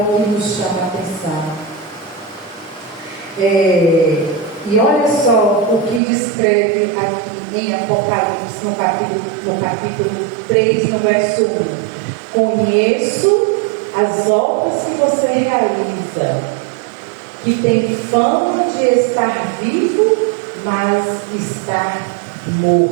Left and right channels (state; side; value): drops out; left; at 6.0 s